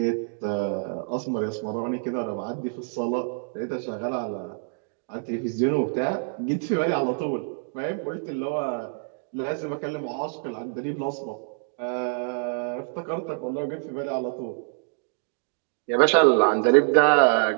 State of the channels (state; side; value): silent; left; digital silence